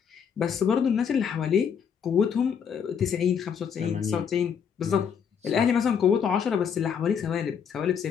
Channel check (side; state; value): right; quieter; 7.2 dB